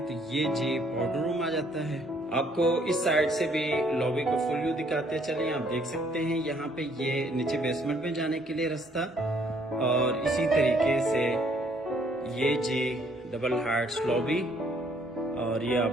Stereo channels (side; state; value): both; normal; correlation 0.65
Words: तो ये जी पाउडर रूम आ जाता है। आपको इस साइड से भी लॉबी को फुल व्यू दिखाते चलिए। आप देख सकते हैं यहाँ पे ये नीचे बेसमेंट में जाने के लिए रास्ता और इसी तरीके से ये जी डबल हाइट्स लॉबी और ये